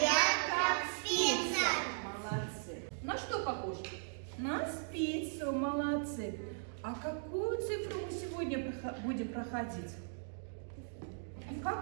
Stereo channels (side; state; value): left; silent; digital silence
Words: как спица. Молодцы. На что похож? На спицу, молодцы. А какую цифру мы сегодня будем проходить?